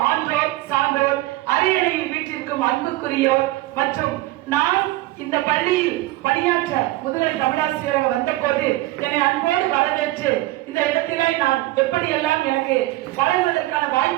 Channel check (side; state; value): left; quieter; 17.9 dB